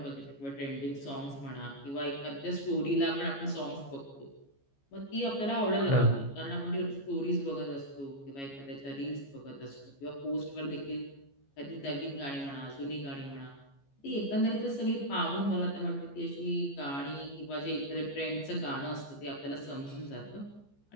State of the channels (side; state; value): right; late; 14 ms